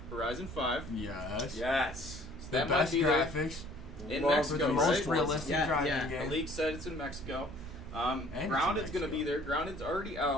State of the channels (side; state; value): both; normal; correlation 0.54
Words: Horizon 5. Yes. Yes. So The that best might be there graphics. in For Mexico, the most right? realistic Yeah, driving yeah. The game. league said it's in Mexico. And it's in Grounded's going to Mexico. be there. Grounded's already